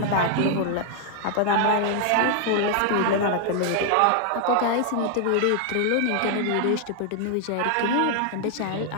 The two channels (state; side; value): different; both; correlation 0.00